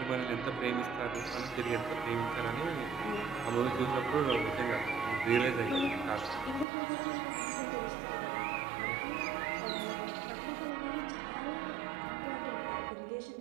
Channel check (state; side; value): drops out; left; at 6.7 s